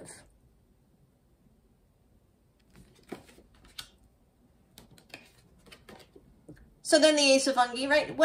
So then the Ace of Fungi, right?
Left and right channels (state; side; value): identical; both; correlation 1.00